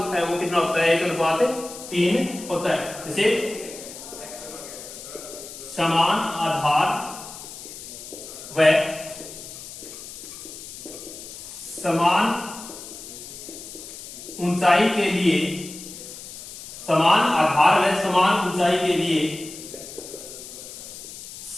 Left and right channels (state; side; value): noise; left; hiss, 13 dB below the sound